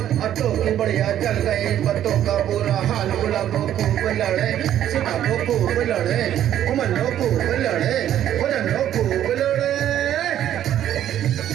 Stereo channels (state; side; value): quieter; left; 11.2 dB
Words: अत्तो की बढ़िया चल गए, पत्तों का बुरा हाल। गुलाबो खूब लड़े, सिताबो खूब लड़े, उमनो खूब लड़े, उमनो खूब लड़े।